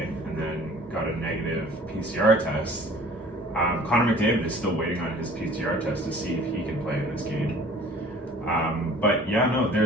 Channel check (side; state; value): both; normal; correlation 0.49